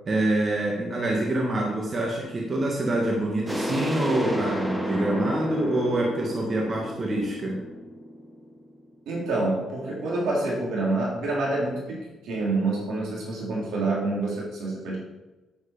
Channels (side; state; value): both; normal; correlation 0.80